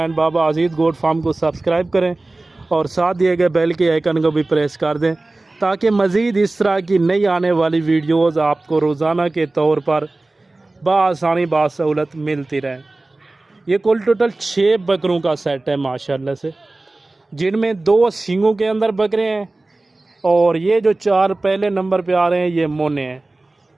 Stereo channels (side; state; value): left; quieter; 3.0 dB